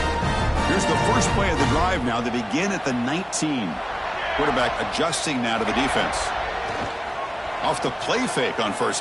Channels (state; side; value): identical; both; correlation 1.00